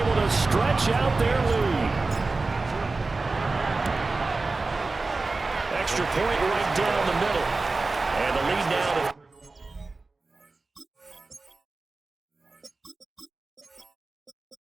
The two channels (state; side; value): quieter; left; 3.6 dB